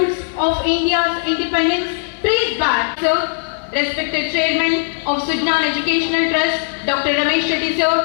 of India's independence trace back, sir. Respected Chairman of Sujnan Educational Trust, Dr. Ramesh Shetty, sir,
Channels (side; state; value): right; silent; 58 dB below the other